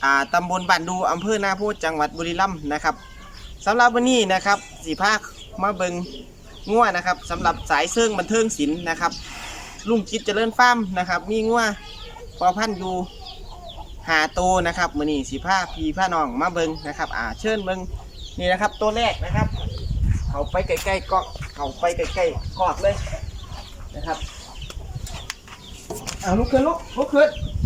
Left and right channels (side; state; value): both; identical; correlation 1.00